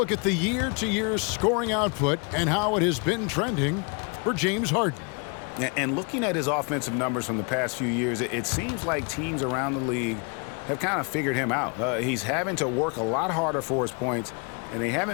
at the year-to-year scoring output and how it has been trending for James Harden. And looking at his offensive numbers from the past few years, it seems like teams around the league have kind of figured him out. He's having to work a lot harder for his points, and they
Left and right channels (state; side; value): quieter; right; 34.8 dB